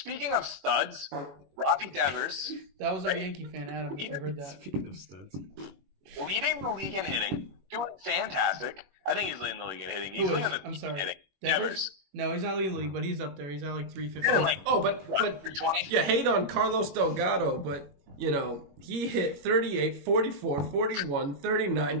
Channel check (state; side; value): late; left; 21 ms